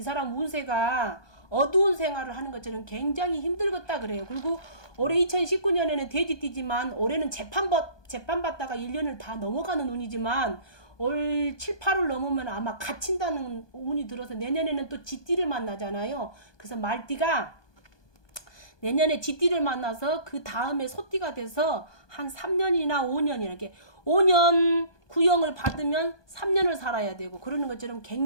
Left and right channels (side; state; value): right; late; 1.2 ms